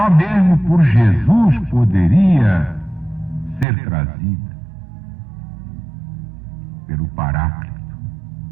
mesmo por Jesus poderia ser trazida pelo Paráclito.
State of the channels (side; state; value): left; drops out; at 3.7 s